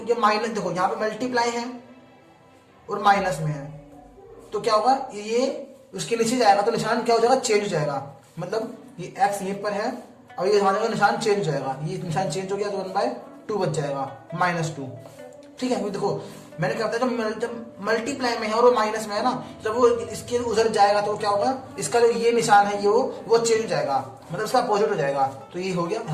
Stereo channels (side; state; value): both; identical; correlation 1.00